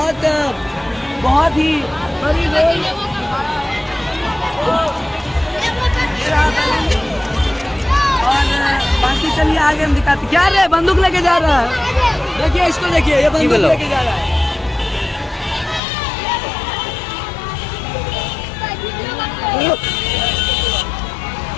ही बड़ी रोल। और बाकी चलिए आगे हम दिखाते। क्या रे बंदूक लेके जा रहा है, देखिए इसको देखिए, ये बंदूक लेके जा रहा है।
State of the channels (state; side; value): drops out; right; at 15.8 s